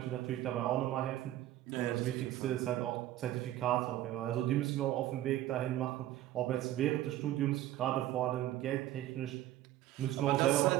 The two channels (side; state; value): left; quieter; 14.0 dB